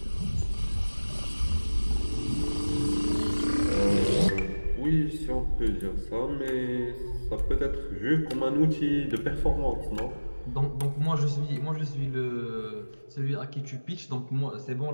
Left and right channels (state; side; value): inverted; both; correlation -1.00